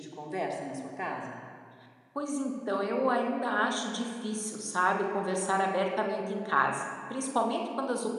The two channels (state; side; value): identical; both; correlation 1.00